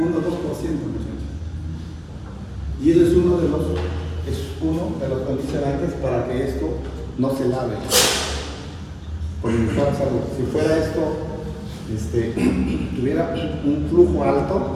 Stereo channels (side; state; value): both; identical; correlation 1.00